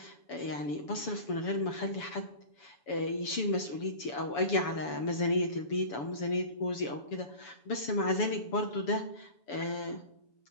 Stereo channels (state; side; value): late; right; 7.0 ms